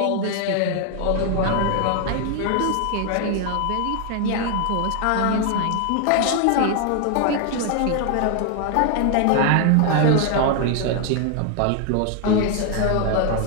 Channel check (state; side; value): different; both; correlation 0.00